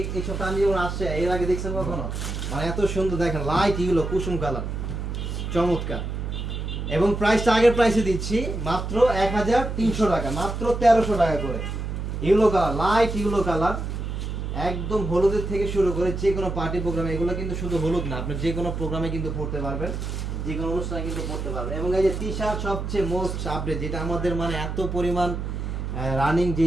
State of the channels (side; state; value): right; noise; hum, 4 dB below the sound